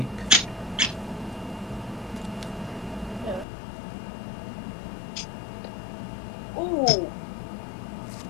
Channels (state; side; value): drops out; right; at 3.5 s